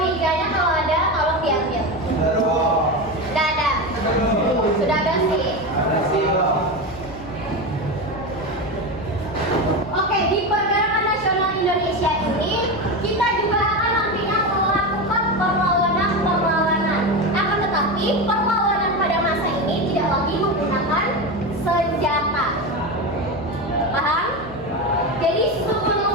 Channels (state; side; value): noise; left; hum, 17 dB below the sound